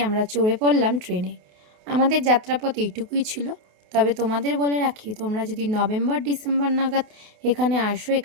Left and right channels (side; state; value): left; late; 28 ms